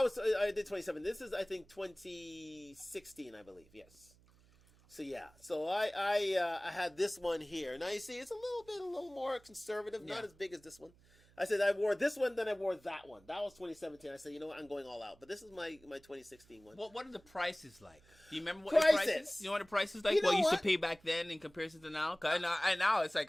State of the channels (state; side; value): noise; right; hum, 28 dB below the sound